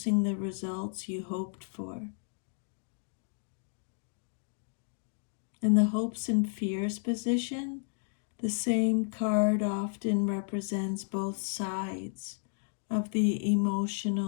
the results you hoped for. In the hopes and fears position, the same card often represents both sides of the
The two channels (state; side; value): silent; right; 56 dB below the other